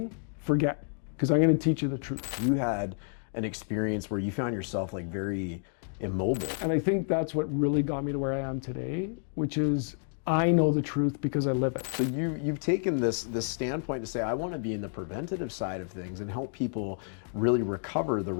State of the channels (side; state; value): right; silent; 58 dB below the other